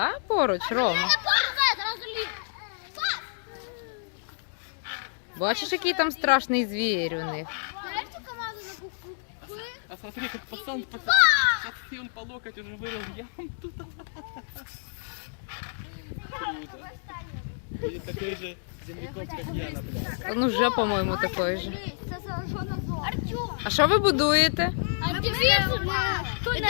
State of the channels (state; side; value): silent; right; digital silence